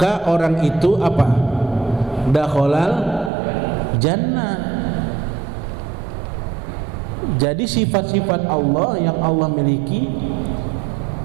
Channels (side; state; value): left; drops out; at 3.3 s